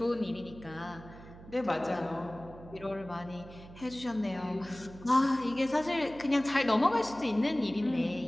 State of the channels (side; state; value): right; noise; hum, 17 dB below the sound